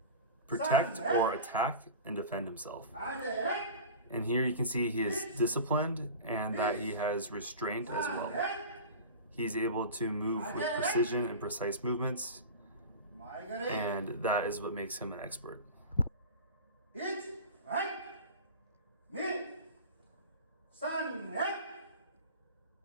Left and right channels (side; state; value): both; inverted; correlation -0.33